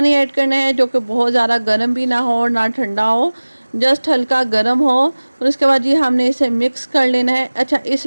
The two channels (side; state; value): both; inverted; correlation -1.00